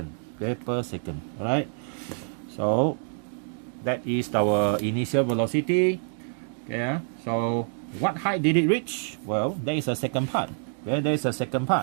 Okay, per second. All right. So that is our initial velocity. Okay, so what height did it reach? Well, there is a second part. Okay, there is a second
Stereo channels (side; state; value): left; silent; 60 dB below the other